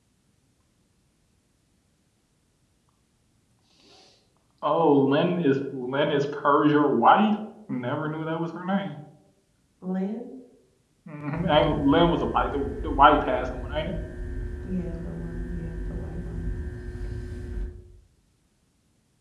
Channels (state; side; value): identical; both; correlation 1.00